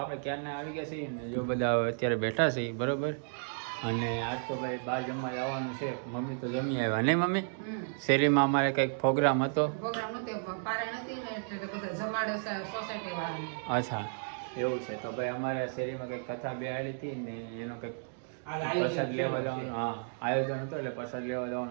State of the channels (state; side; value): silent; left; digital silence